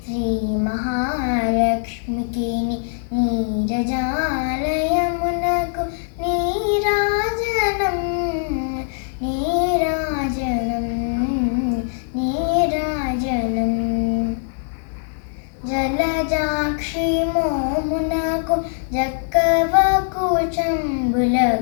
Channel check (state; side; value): silent; right; digital silence